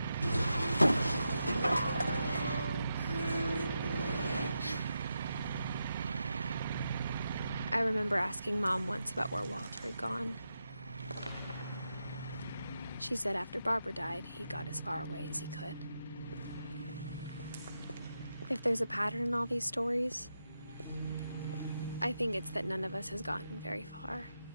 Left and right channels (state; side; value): inverted; both; correlation -0.87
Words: I remember asking Mom once about where Walter had gone. She said after Barbara died, he got as far away as he could. If there's a pattern in all these stories, I think it's that none of us has gotten very far.